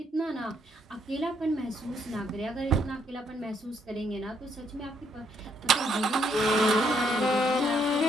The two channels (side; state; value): both; normal; correlation 0.72